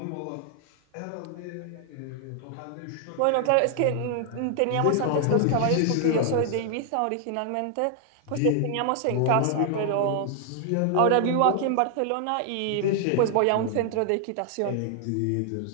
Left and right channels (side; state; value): both; different; correlation 0.00